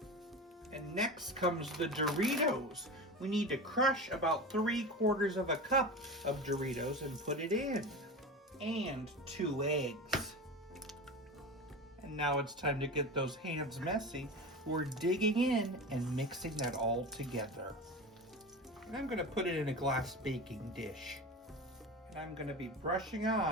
And next comes the Doritos. We need to crush about 3/4 of a cup of Doritos and put it in. And 2 eggs. And now it's time to get those hands messy. We're digging in and mixing that all together. And I'm gonna put it in a glass baking dish. And I'm gonna be brushing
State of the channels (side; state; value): both; normal; correlation 0.28